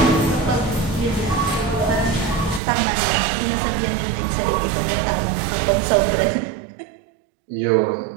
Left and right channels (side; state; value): left; drops out; at 2.6 s